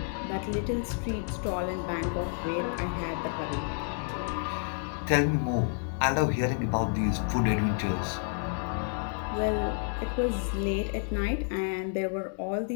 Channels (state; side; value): silent; right; 58 dB below the other